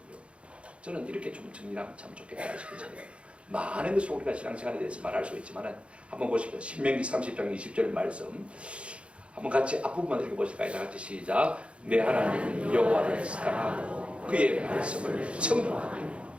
저는 이렇게 좀 정리하면 참 좋겠다 싶거든요. 많은 것을 우리가 신앙생활에 대해서 말할 수 있지만 한번 보십시오. 신명기 30장 20절 말씀 한번 같이 앞부분만 읽어보실까요? 다 같이 시작. 내 하나님 여호와를 사랑하고 그의 말씀을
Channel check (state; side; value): late; left; 0.060 ms